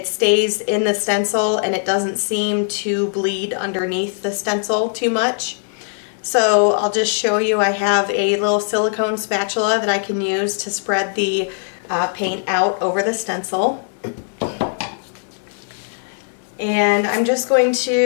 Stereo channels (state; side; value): silent; right; digital silence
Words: stays in the stencil and it doesn't seem to bleed underneath the stencil too much. So I'll just show you. I have a little silicone spatula that I can use to spread the paint out over the stencil. And I'm just going